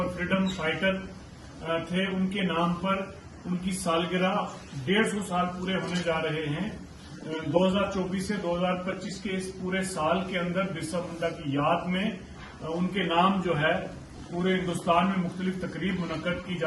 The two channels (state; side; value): identical; both; correlation 1.00